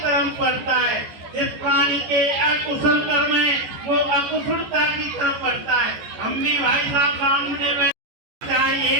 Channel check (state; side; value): late; left; 14 ms